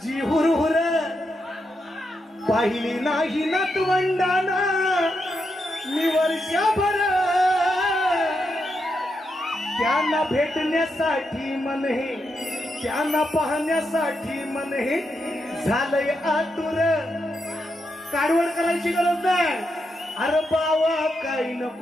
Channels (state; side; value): normal; both; correlation 0.84